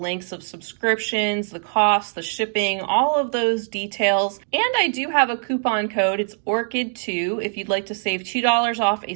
of subscriptions, the cost, the shipping, all of those details. And I do have a coupon code. It's ORCHID2 if you'd like to save $2 off a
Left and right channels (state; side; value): silent; left; digital silence